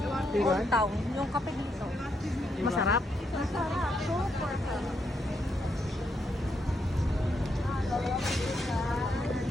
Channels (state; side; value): normal; both; correlation 0.79